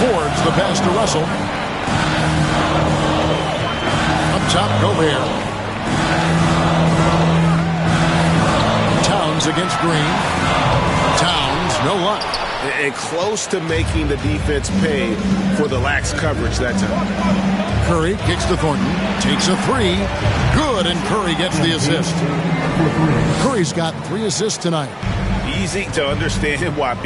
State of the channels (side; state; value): both; identical; correlation 1.00